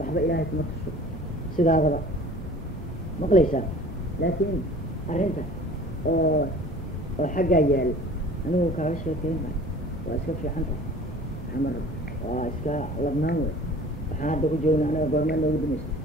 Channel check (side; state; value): both; normal; correlation 0.46